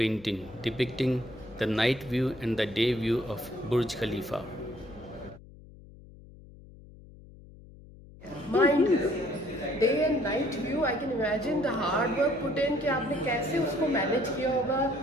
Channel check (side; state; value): left; noise; hum, 20 dB below the sound